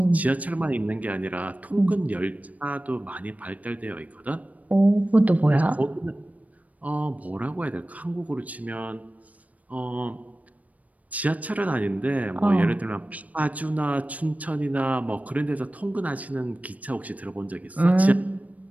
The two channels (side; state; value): left; late; 0.071 ms